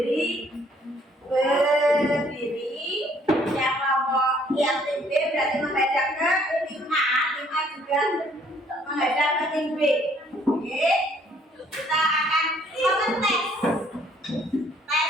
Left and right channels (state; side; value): normal; both; correlation 0.63